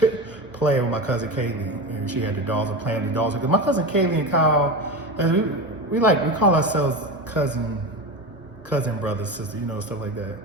playing with my cousin Kaylee, and she had the dolls and playing the dolls. Because my cousin Kaylee and Kyle, we call ourselves cousin brothers, sister, you know, stuff like that.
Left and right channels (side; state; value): both; normal; correlation 0.23